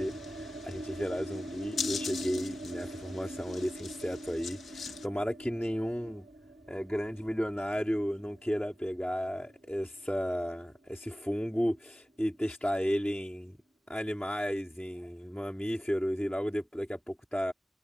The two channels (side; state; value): both; normal; correlation 0.97